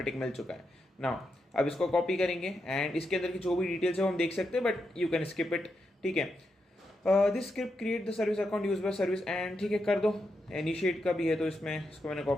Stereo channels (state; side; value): normal; both; correlation 0.84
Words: टिक मिल चुका है। नाउ अब इसको कॉपी करेंगे एंड इसके अंदर की जो भी डिटेल्स है वो हम देख सकते हैं, but you can skip it. ठीक है, this script create the service account use by service and, ठीक है कर दो। इनिशिएट का भी है तो इसमें इसको मैंने